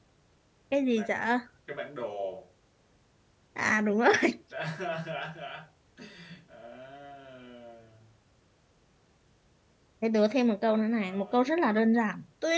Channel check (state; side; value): identical; both; correlation 1.00